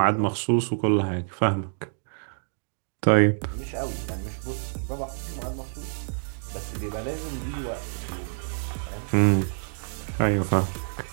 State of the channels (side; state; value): left; silent; digital silence